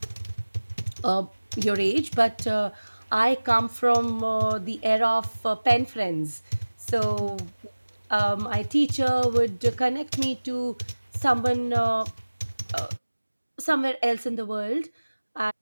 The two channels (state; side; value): inverted; both; correlation -1.00